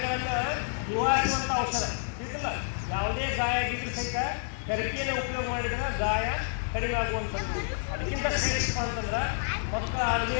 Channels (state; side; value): silent; right; digital silence